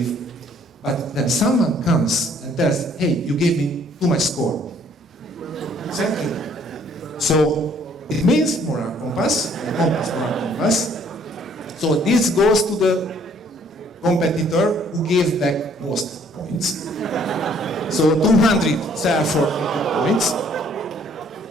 But when someone comes and tells, hey, you gave me too much score. Thank you. So it means moral compass, moral compass. So this goes to the competitor who gave back most points. So 200 sell for points.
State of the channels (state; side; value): normal; both; correlation 0.61